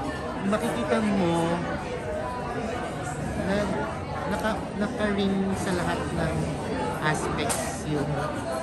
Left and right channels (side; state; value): both; identical; correlation 1.00